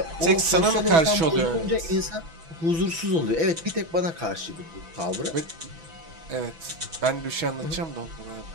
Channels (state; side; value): late; left; 6.1 ms